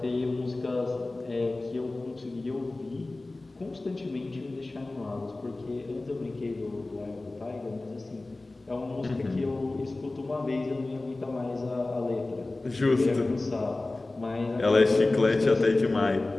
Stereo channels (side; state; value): right; quieter; 3.0 dB